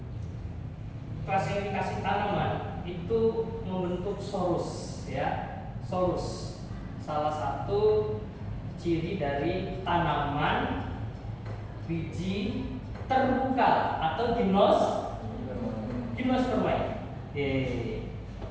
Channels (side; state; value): both; identical; correlation 1.00